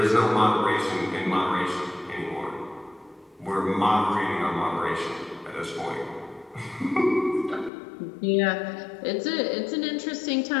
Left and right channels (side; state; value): right; drops out; at 7.7 s